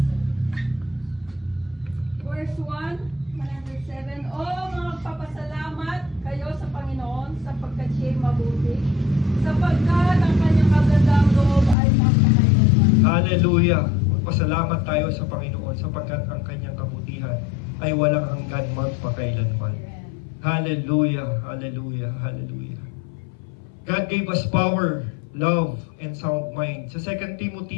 Verse 1, 107. Magpapasalamat kayo sa Panginoon sapagkat siya'y mabuti, sapagkat ang kanyang kagandang loob ay magpakailanman. Hallelujah. Magpasalamat tayo sa Panginoon sapagkat ang kanyang kabutihan ay walang hanggan magpakailanman. Hallelujah. Hallelujah. Hallelujah. God gave us power, love, and sound mind. Sa 2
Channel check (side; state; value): right; drops out; at 11.8 s